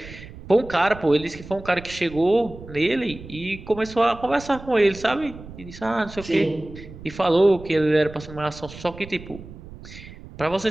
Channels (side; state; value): right; noise; rumble, 16 dB below the sound